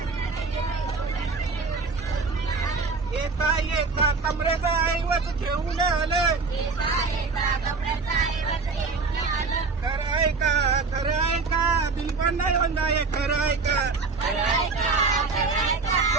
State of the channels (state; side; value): quieter; left; 4.3 dB